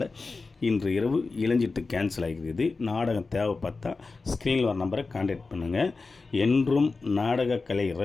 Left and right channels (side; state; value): right; quieter; 4.0 dB